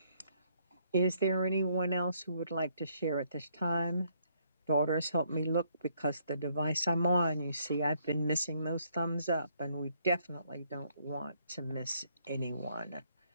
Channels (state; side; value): inverted; both; correlation -0.70